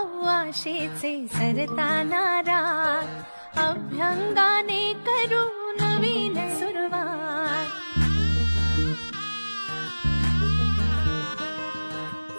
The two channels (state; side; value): inverted; both; correlation -1.00